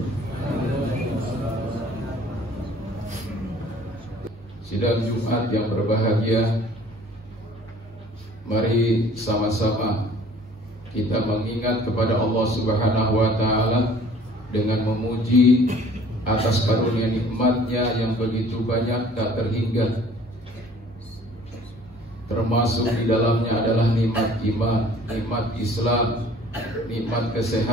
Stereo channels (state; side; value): normal; both; correlation 0.52